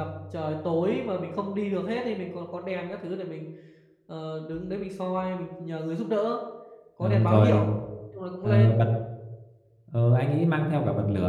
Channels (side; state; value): both; identical; correlation 1.00